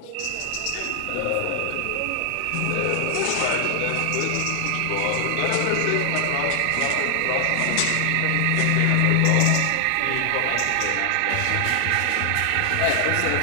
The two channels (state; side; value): different; both; correlation 0.00